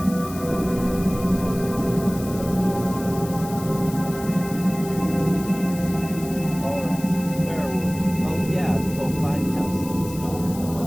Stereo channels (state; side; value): noise; left; hiss, 15 dB below the sound